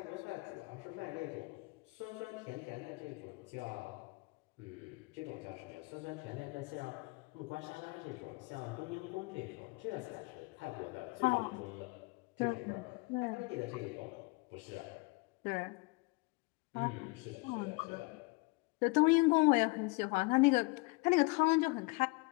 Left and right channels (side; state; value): right; quieter; 26.8 dB